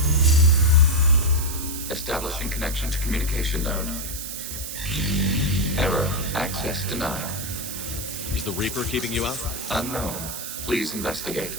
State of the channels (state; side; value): noise; right; hiss, 7 dB below the sound